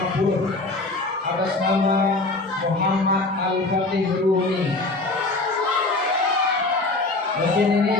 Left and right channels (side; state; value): right; quieter; 3.1 dB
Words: atas nama Muhammad Al-Fatih Rumi. Mungkin ini